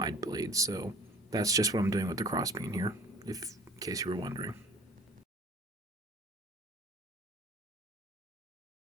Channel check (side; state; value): both; normal; correlation 0.48